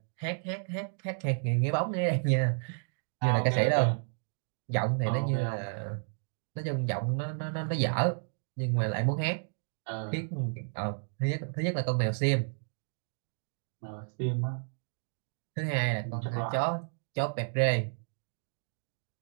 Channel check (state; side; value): silent; left; digital silence